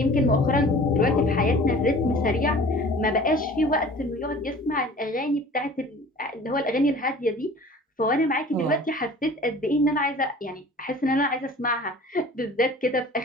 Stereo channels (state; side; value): normal; both; correlation 0.45